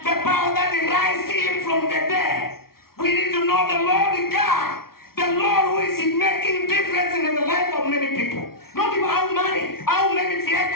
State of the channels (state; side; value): late; right; 0.94 ms